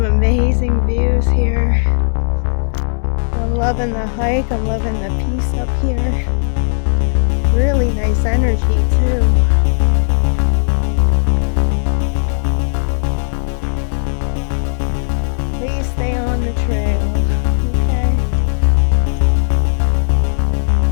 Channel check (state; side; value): silent; right; digital silence